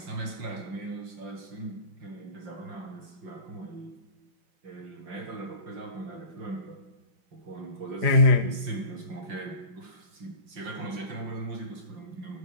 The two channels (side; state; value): left; late; 5.7 ms